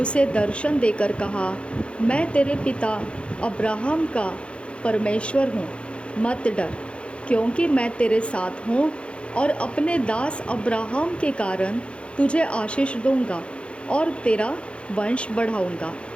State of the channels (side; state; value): right; late; 0.059 ms